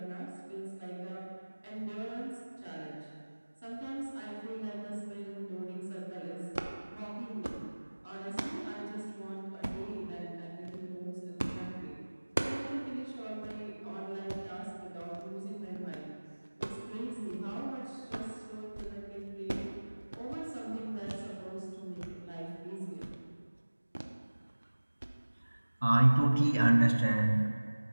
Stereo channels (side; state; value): both; inverted; correlation -1.00